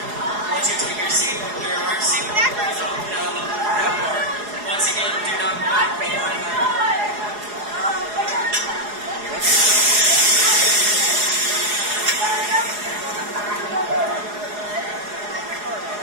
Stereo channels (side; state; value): left; late; 4.8 ms